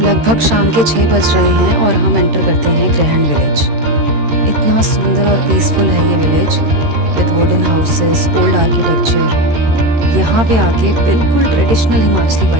शाम के 6 बज रहे हैं और हम एंटर करते हैं ग्रहण विलेज। इतना सुंदर और पीसफुल है ये village, with wooden houses, old architecture. यहाँ पे आके बिल्कुल ट्रेडिशनल हिमाचली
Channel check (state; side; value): late; left; 13 ms